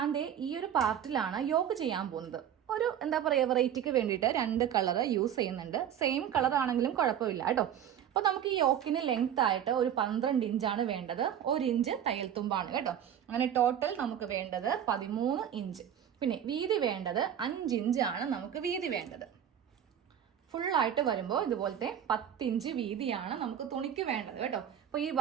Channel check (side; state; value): left; quieter; 9.6 dB